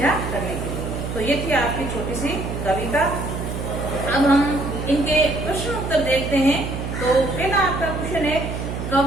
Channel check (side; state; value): right; noise; hum, 5 dB below the sound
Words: करने के लिए। तो ये थी आपकी छोटी सी कविता। अब हम इनके प्रश्न उत्तर देखते हैं। तो पहला आपका क्वेश्चन है,